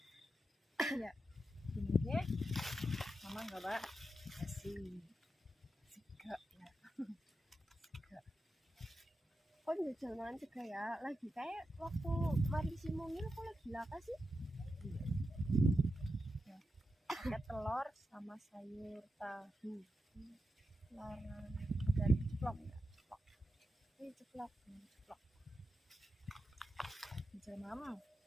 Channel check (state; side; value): normal; both; correlation 0.88